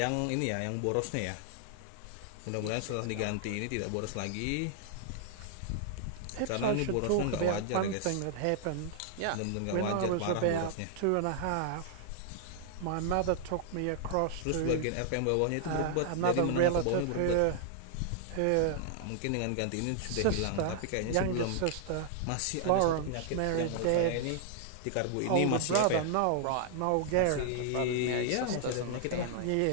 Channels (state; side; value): different; both; correlation -0.01